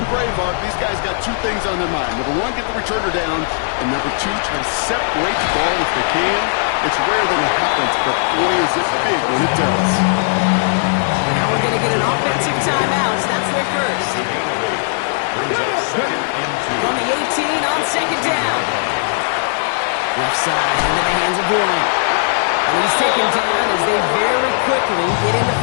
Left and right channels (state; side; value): silent; right; digital silence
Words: Braveheart, these guys got 2 things on their mind. Number 1, get the returner down. And number 2, try to separate the ball if they can. It's rare that it happens, but boy, is it big when it does. Now we're going to get an offensive timeout. That's their first. A gain of 8. Brings up 2nd and 2. From the 18 on 2nd down. Left side into the hands of Warren. And he's taken down as they very quickly get into